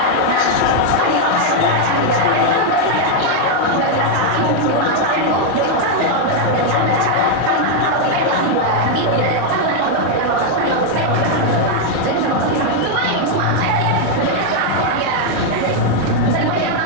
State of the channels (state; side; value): different; both; correlation 0.00